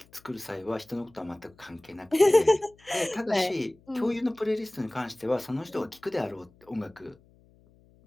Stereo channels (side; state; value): left; noise; hum, 29 dB below the sound